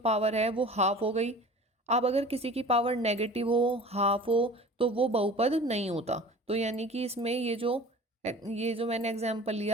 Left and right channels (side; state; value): both; normal; correlation 0.42